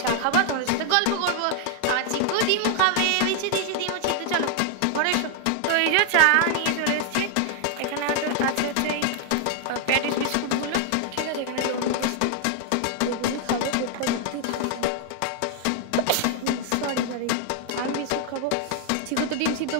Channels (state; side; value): different; both; correlation 0.00